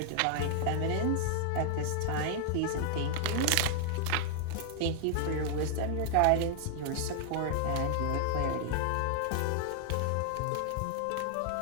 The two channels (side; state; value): both; different; correlation 0.00